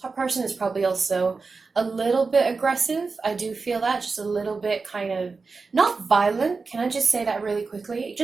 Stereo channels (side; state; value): left; quieter; 4.4 dB